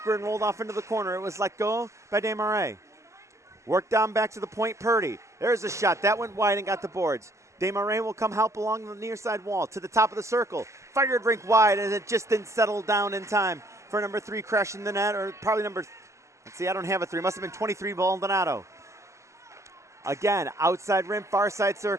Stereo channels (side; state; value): left; late; 0.14 ms